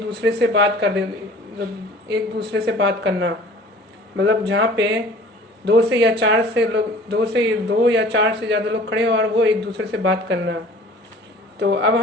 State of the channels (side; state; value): both; normal; correlation 0.47